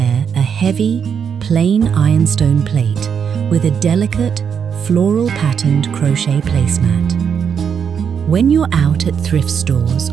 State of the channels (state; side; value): quieter; left; 7.2 dB